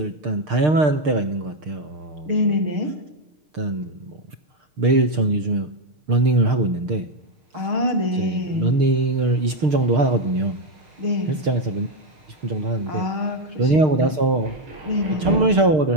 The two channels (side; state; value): left; late; 6.6 ms